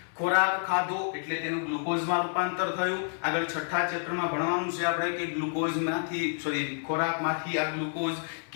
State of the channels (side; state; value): right; silent; 58 dB below the other